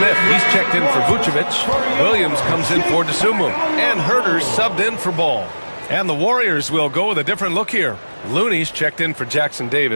he's checked in for Vucevic. Williams comes in for DeSumo. And Herter's subbed in for Ball. And the Warriors will go with a different look here. Looney's checked in for Jackson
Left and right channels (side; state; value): both; inverted; correlation -1.00